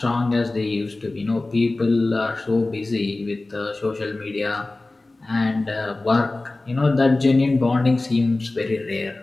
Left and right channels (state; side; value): quieter; right; 3.1 dB